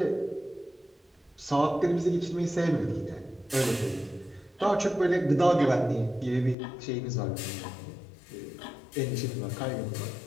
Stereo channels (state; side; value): drops out; right; at 6.6 s